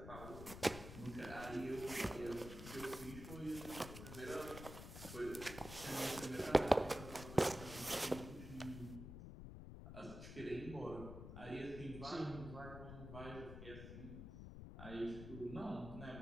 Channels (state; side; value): noise; left; rumble, 10 dB below the sound